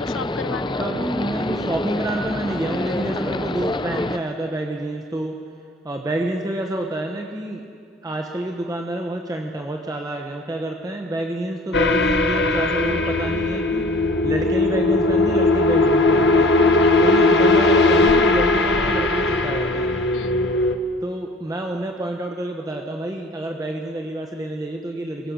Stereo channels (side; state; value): both; normal; correlation 0.49